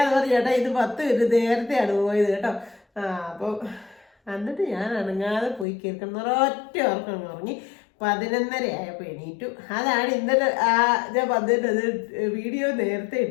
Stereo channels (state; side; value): drops out; right; at 5.7 s